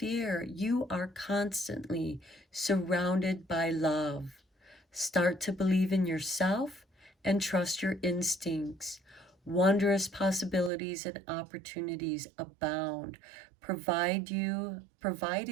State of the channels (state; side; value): drops out; left; at 10.7 s